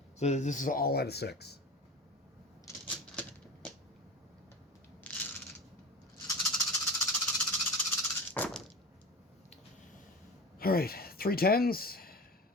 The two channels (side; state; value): both; normal; correlation 0.31